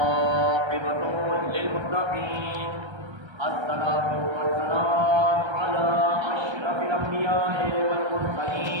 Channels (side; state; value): left; late; 1.3 ms